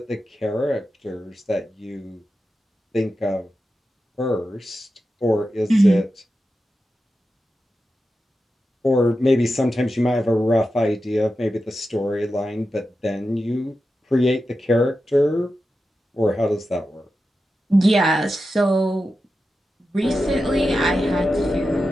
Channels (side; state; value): both; normal; correlation 0.91